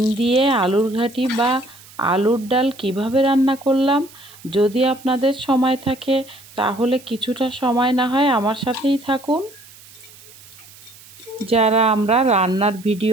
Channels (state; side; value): noise; right; hiss, 22 dB below the sound